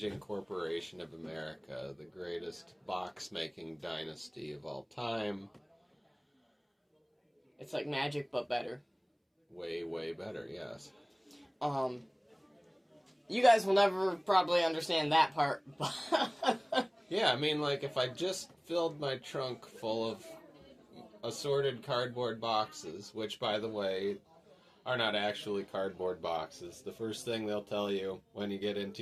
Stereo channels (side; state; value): both; identical; correlation 1.00